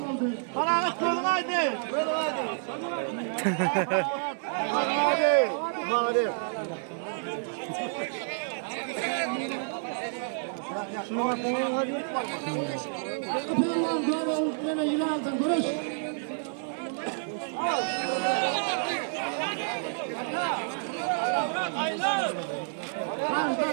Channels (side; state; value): left; silent; 58 dB below the other